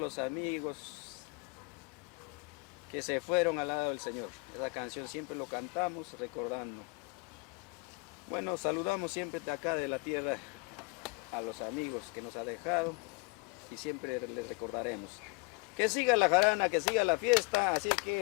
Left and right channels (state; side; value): quieter; right; 29.4 dB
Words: amigos que se fueron al lado del Señor. Esa canción siempre lo cantamos recordando. Bueno, saludamos siempre de acá de la tierra a los amigos que nos ha dejado y siempre les recordaremos. Que siga la jarana, que siga la fiesta, así que